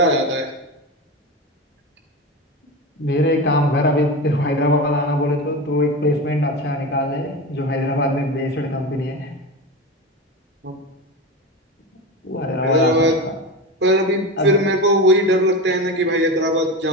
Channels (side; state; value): both; normal; correlation 0.23